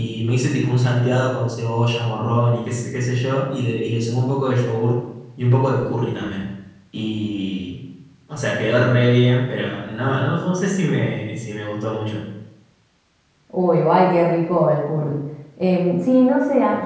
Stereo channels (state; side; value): identical; both; correlation 1.00